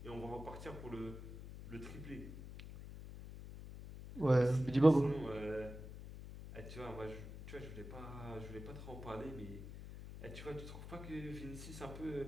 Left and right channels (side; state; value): left; noise; hum, 11 dB below the sound